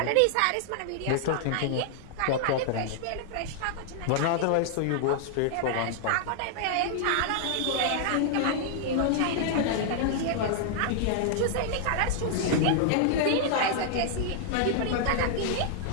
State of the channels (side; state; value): both; different; correlation -0.01